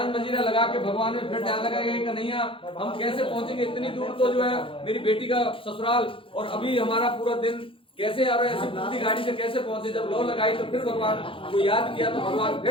मजीरा लगा के भगवान में फिर ध्यान लगाया कि कन्हैया हम कैसे पहुंचेंगे इतनी दूर, तो जो है मेरी बेटी का ससुराल और अभी हमारा पूरा दिन कैसे आ रहा है, ऐसी पूरी गाड़ी से कैसे पहुंचे। जब लौ लगाई तो फिर भगवान को याद किया तो भगवान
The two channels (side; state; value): right; late; 0.25 ms